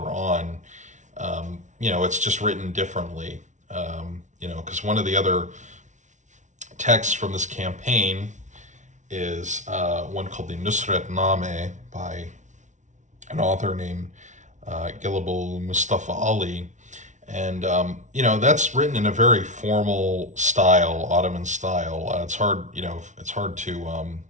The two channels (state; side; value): late; left; 0.36 ms